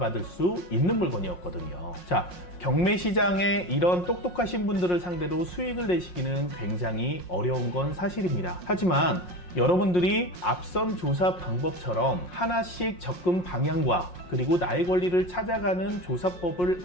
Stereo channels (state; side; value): late; right; 5.6 ms